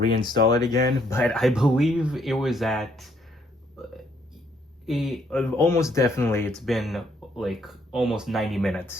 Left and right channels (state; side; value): normal; both; correlation 0.69